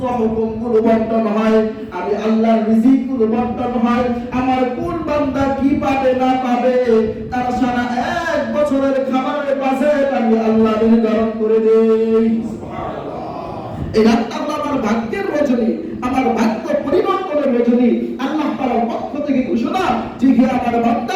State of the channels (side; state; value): both; identical; correlation 1.00